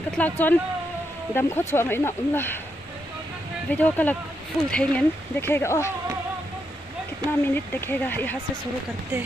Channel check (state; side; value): normal; both; correlation 0.81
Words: katlak chon dam kho chwa mai na umla video kalak full thengen देखेगा ओ कितना मिनट देखेगा यहाँ से शुरू करते